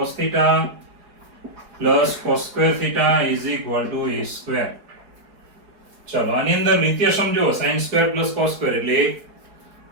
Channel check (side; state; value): left; late; 5.4 ms